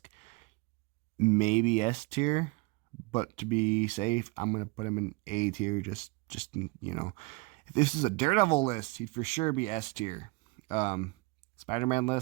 maybe S tier, but to be safe, I'm gonna put him in A tier. Just you know, if this is a Daredevil list, he'd for sure be S tier. Spider-Man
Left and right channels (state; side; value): quieter; left; 25.5 dB